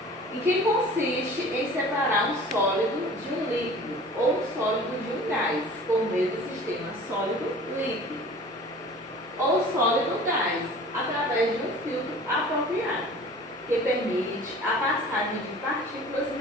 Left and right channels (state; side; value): normal; both; correlation 0.44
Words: em que consiste em separar um sólido de um líquido ou um sólido de um gás, por meio do sistema sólido-líquido ou sólido-gás, através de um filtro apropriado, que permite a passagem de partículas